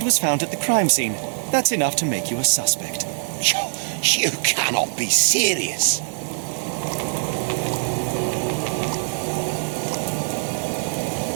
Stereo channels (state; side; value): silent; left; digital silence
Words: was found at the crime scene. That's enough to make you a suspect. You cannot be serious.